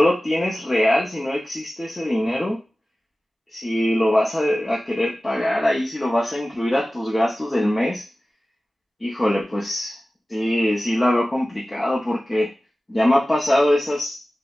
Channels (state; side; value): normal; both; correlation 0.96